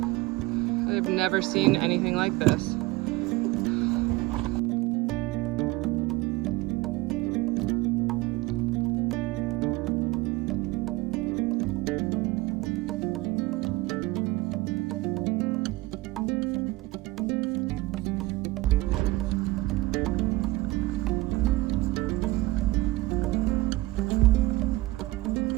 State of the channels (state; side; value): quieter; left; 19.6 dB